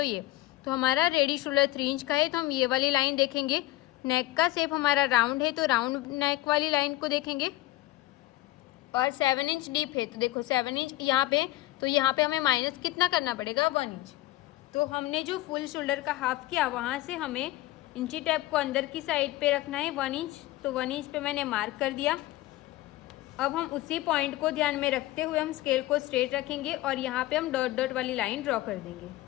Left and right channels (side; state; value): right; quieter; 17.0 dB